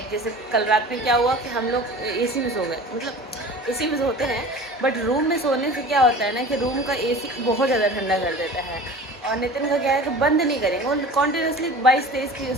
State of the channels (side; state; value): both; normal; correlation 0.39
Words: जैसे कल रात में क्या हुआ कि हम लोग एसी में सो गए, मतलब एसी में सोते हैं बट रूम में सोने से क्या होता है ना कि रूम का एसी बहुत ज़्यादा ठंडा कर देता है। और नितिन का क्या है कि बंद नहीं करेंगे, वो कॉन्टीन्यूसली 22-23 की उस